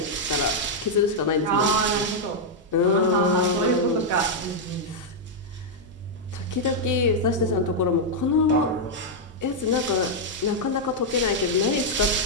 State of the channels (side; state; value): both; normal; correlation -0.03